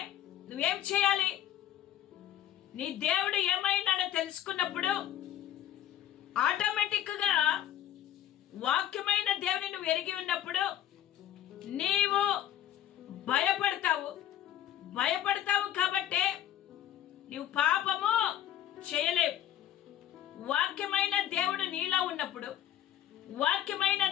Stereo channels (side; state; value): right; quieter; 11.7 dB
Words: నువ్వేం చేయాలి? నీ దేవుడు ఏమైనాడో తెలుసుకున్నప్పుడు ఆటోమేటిక్ గా వాక్యమైన దేవుని నువ్వు ఎరిగి ఉన్నప్పుడు నీవు భయపడతావు కాబట్టి నీవు పాపము చేయలేవు. వాక్యమైన దేవుడు నీలో ఉన్నప్పుడు, వాక్యమైన